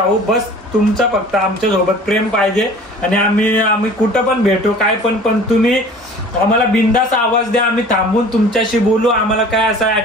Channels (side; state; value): both; normal; correlation 0.46